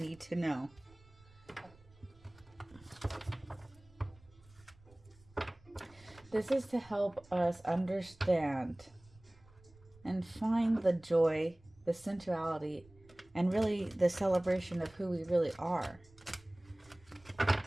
to know. This is to help us understand and find the joy, the sensuality, and really the celebration of who we really are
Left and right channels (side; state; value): right; noise; rumble, 27 dB below the sound